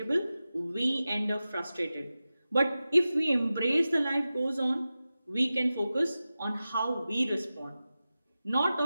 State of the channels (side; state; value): both; inverted; correlation -0.94